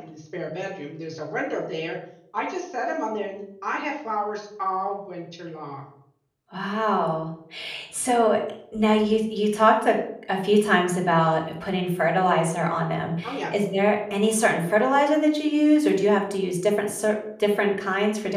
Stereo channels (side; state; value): both; identical; correlation 1.00